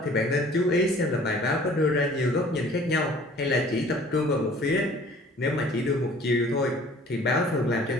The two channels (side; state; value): both; normal; correlation 0.51